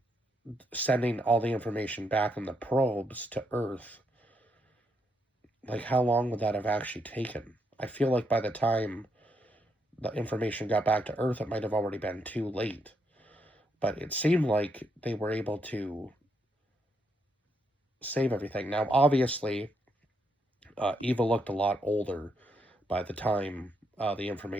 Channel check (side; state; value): both; normal; correlation 0.77